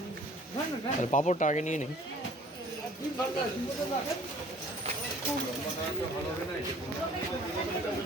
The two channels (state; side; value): normal; both; correlation 0.52